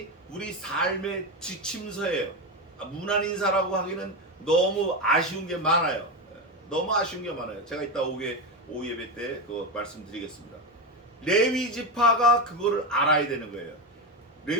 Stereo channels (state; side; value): normal; both; correlation 0.15